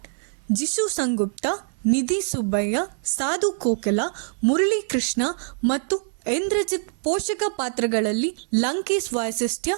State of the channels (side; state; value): left; silent; 58 dB below the other